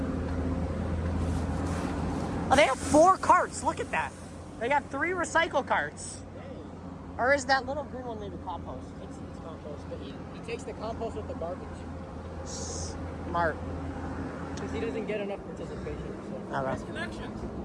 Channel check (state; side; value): identical; both; correlation 1.00